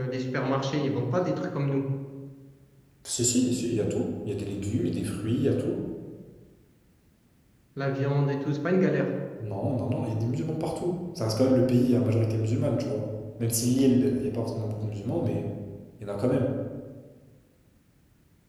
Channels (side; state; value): both; identical; correlation 1.00